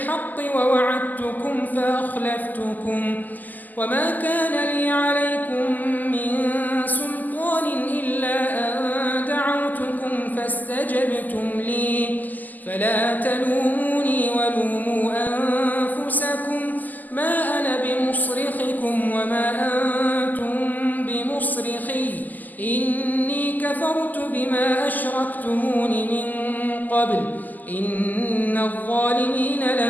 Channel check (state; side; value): late; right; 0.083 ms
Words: ووعدتكم فأخلفتكم وما كان لي عليكم من سلطان إلا أن دعوتكم فاستجبتم لي فلا تلوموني ولوموا أنفسكم ما أنا بمصرخكم وما أنتم بمصرخي إني كفرت بما أشركتمون من قبل إن الظالمين